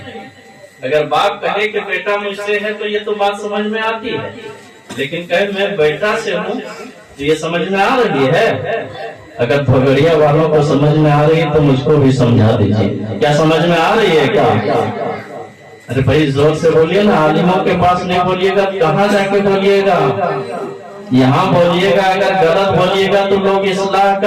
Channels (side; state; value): both; identical; correlation 1.00